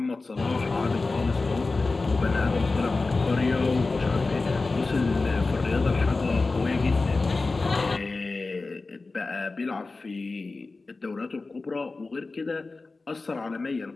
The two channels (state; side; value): quieter; right; 3.6 dB